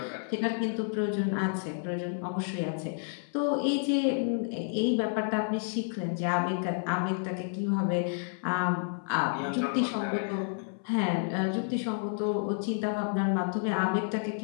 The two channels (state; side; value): silent; right; 58 dB below the other